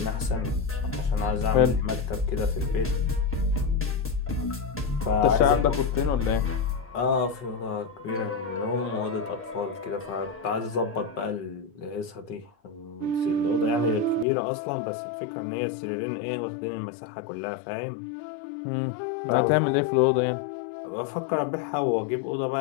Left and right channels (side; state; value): right; drops out; at 14.2 s